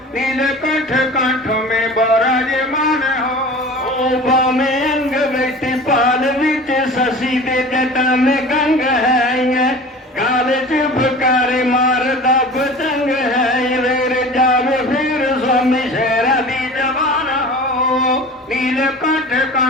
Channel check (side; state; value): both; normal; correlation 0.39